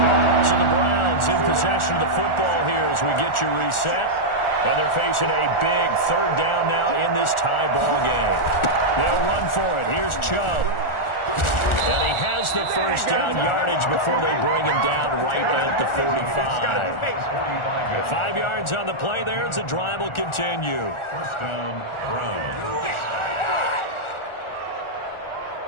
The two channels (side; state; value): right; late; 1.4 ms